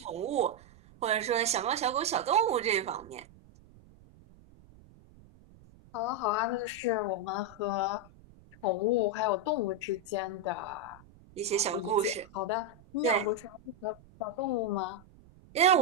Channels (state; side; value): noise; right; rumble, 24 dB below the sound